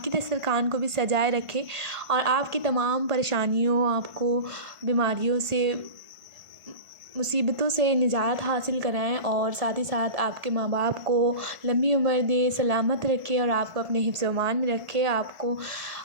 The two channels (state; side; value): late; left; 1.5 ms